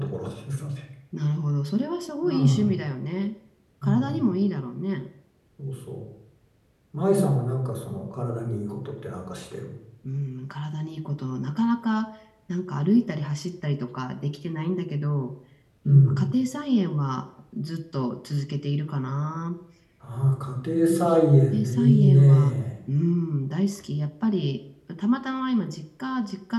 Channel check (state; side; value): identical; both; correlation 1.00